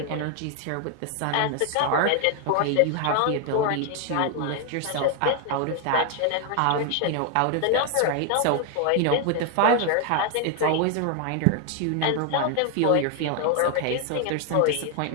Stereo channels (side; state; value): both; different; correlation 0.00